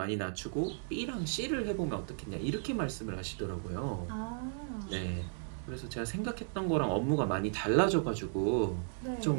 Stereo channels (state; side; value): silent; left; digital silence